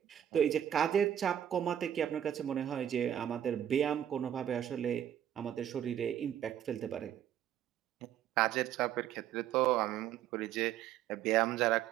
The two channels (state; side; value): quieter; left; 10.5 dB